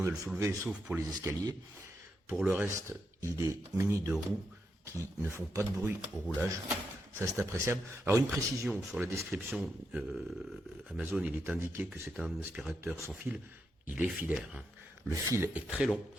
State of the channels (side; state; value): both; normal; correlation 0.83